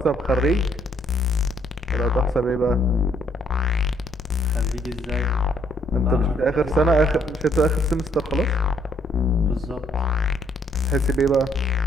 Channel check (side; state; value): both; normal; correlation 0.68